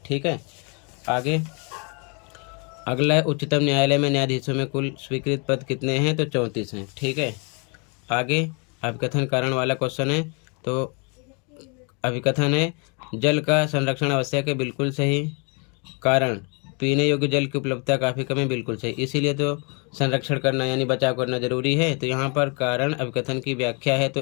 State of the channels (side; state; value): right; quieter; 34.5 dB